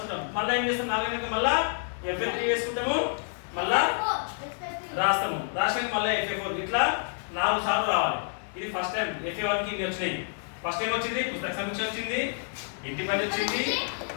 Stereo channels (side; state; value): right; silent; digital silence